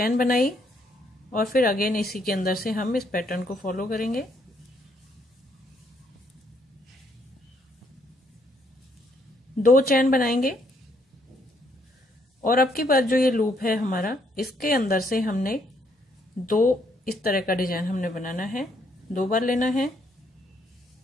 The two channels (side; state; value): both; normal; correlation 0.71